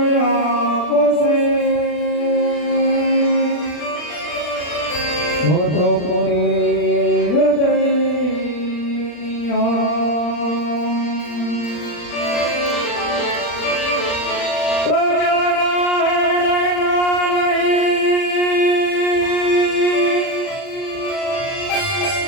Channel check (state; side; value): late; right; 39 ms